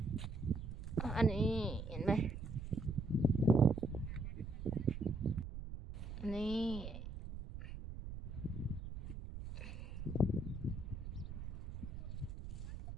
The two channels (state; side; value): noise; right; rumble, 8 dB below the sound